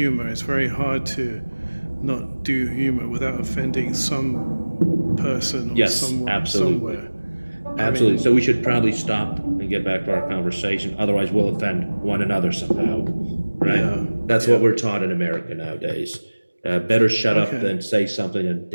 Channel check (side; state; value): both; inverted; correlation -1.00